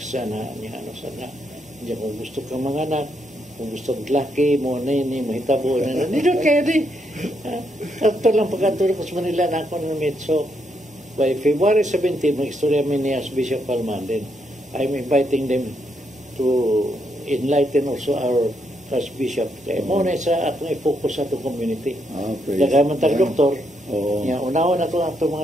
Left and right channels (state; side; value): normal; both; correlation 0.78